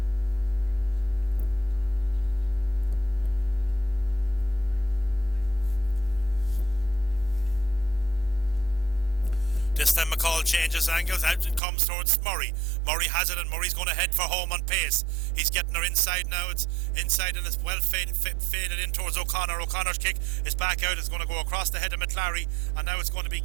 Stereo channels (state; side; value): drops out; left; at 11.6 s